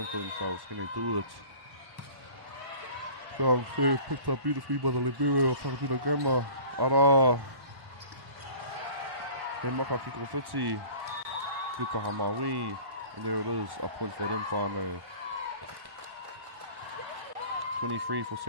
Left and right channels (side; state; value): left; late; 1.1 ms